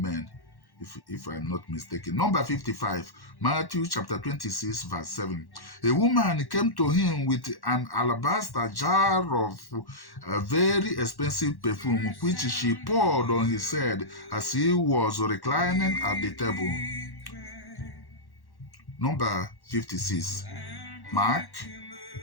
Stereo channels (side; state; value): right; late; 1.1 ms